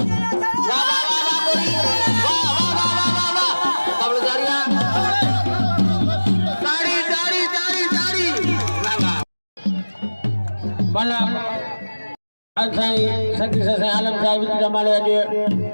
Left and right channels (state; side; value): inverted; both; correlation -1.00